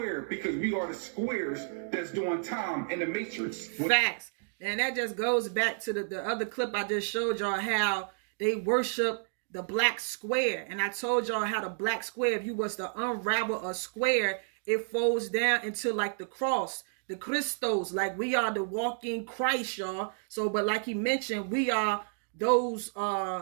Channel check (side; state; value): left; silent; digital silence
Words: because we are the squares that's doing time in the matrix. Facts. And that just goes back to the other clip I just showed y'all, how they worship the black square. And I told y'all how the black square, if you was to unravel a square, it folds down into like the cross, the Christos, like we are the walking Christ, y'all. So, but like he mentioned, we are those